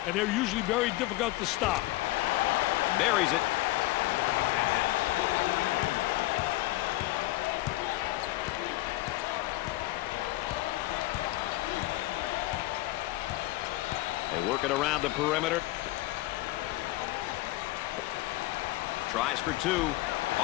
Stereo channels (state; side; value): quieter; right; 18.1 dB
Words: and they're usually very difficult to stop. Buries it. Working around the perimeter. Tries for two.